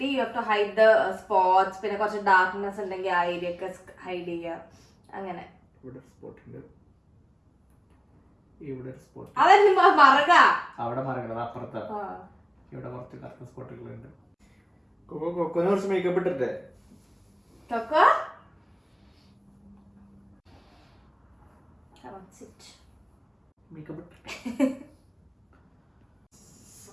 you have to hide the spots, പിന്നെ കുറച്ച് ഡാർക്ക്നെസ് ഉണ്ടെങ്കിൽ ആ ഏരിയ ഒക്കെ ഹൈഡ് ചെയ്യുക അങ്ങനെ. ഇവിടെ സ്പോട്ട് ഉണ്ട്, ഇവിടെ സ്പോട്ട്. അതെന്നെ മറക അവിടെ മറങ്ങണത് അപ്പുറത്താ. ഇവിടെ കുറച്ച് കറുത്ത സ്പോട്ടുകളുണ്ട്. കൊക്കോനെ കുറച്ച് മേക്കപ്പ് ഇട്ടിട്ടേ. കൊക്കോ മേക്കപ്പ്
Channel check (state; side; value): identical; both; correlation 1.00